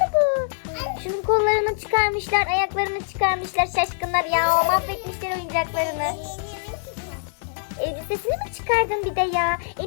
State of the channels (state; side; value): silent; right; digital silence